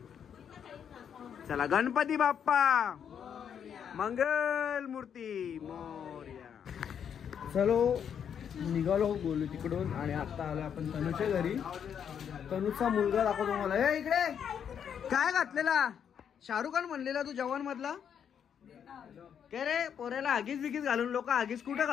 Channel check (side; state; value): right; quieter; 8.2 dB